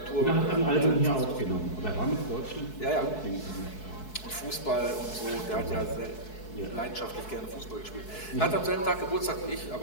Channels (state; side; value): late; right; 4.7 ms